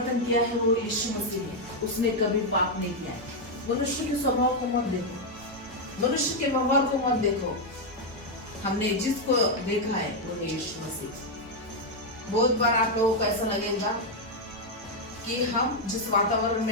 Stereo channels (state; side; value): normal; both; correlation 0.01